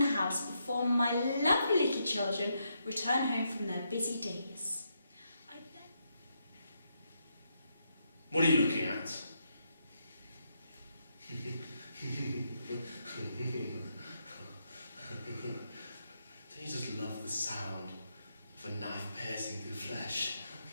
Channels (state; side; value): inverted; both; correlation -0.80